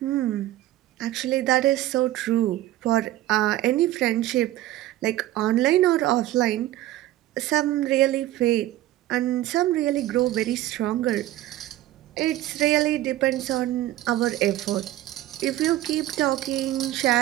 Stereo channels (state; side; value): quieter; left; 14.9 dB